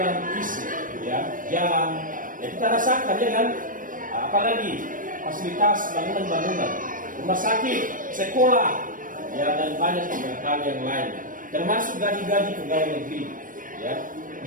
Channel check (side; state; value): left; late; 0.39 ms